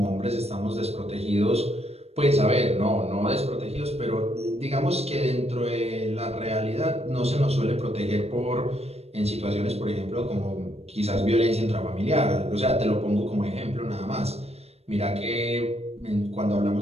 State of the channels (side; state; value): left; late; 0.30 ms